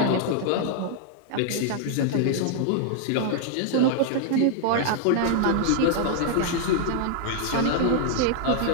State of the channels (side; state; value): both; different; correlation -0.01